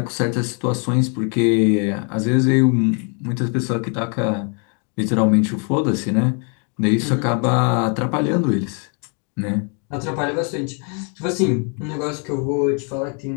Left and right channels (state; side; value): quieter; right; 38.8 dB